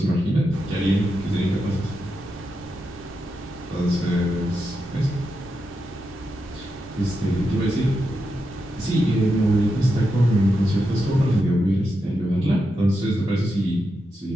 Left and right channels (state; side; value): normal; both; correlation 0.86